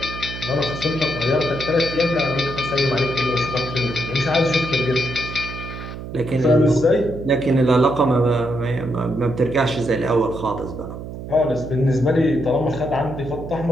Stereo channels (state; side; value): noise; right; hum, 10 dB below the sound